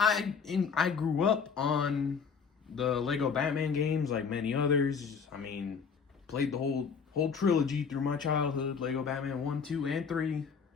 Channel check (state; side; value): quieter; right; 6.1 dB